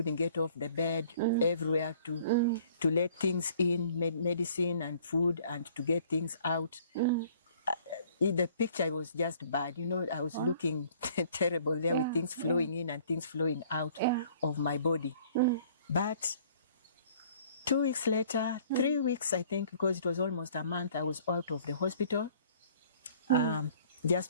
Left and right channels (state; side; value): inverted; both; correlation -0.56